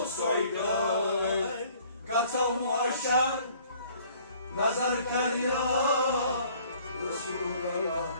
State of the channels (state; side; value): inverted; both; correlation -0.56